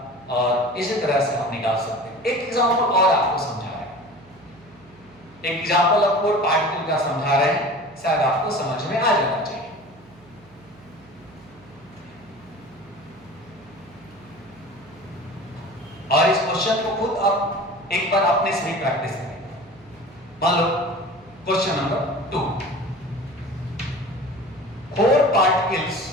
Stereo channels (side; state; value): right; noise; hum, 25 dB below the sound